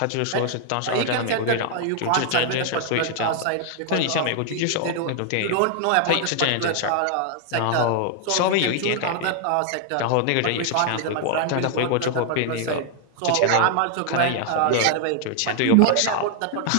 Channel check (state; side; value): different; both; correlation 0.00